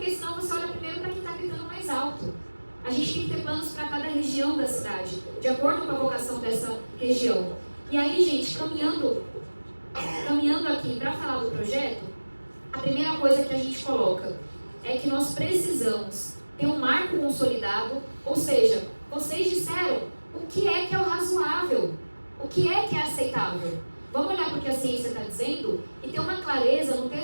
senão você olha primeiro para quem está gritando mais alto. A gente tem que ter planos para cada região da cidade, de acordo com a vocação dessa região. E aí, gente, caminhando aqui para falar do projeto, a primeira coisa que a gente coloca é que nós precisamos ter um marco consolidado, ou seja, vocês disseram o que é o razoável, o que é aceitável. Vamos olhar para o que a ciência está dizendo e ter uma clareza no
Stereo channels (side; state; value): both; inverted; correlation -1.00